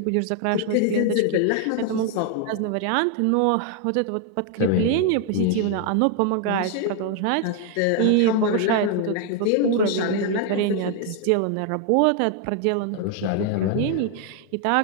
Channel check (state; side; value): different; both; correlation 0.00